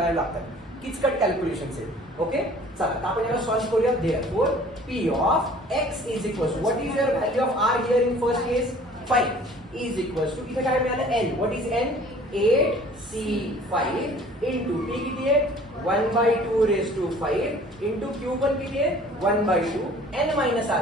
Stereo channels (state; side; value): normal; both; correlation 0.50